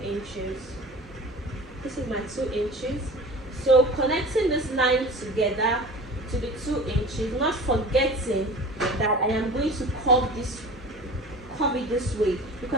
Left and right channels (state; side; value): normal; both; correlation 0.38